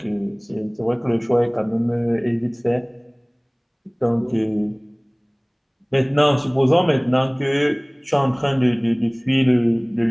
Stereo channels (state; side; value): identical; both; correlation 1.00